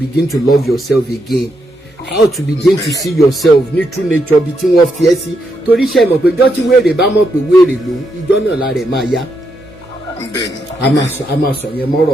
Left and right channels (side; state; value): both; normal; correlation 0.80